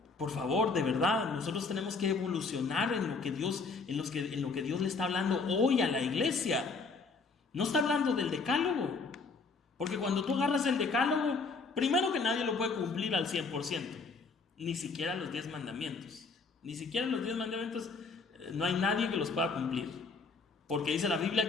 Por favor, de verdad, nosotros tenemos que evolucionar en lo que Dios le está hablando hoy a la iglesia. No está hablando del decálogo. Porque cuando tú agarras el decálogo, primero que nadie lo puede cumplir al 100%. Ni siquiera los 10 mandamientos. Ni siquiera los 10 mandamientos, no hay nadie que los pueda cumplir. Porque dice la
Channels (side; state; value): right; quieter; 4.3 dB